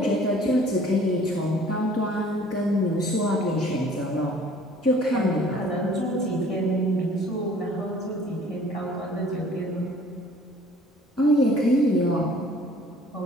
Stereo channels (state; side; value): normal; both; correlation 0.53